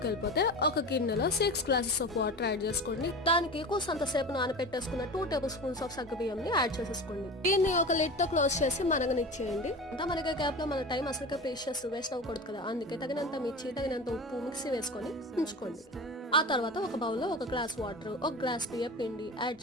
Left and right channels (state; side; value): normal; both; correlation 0.31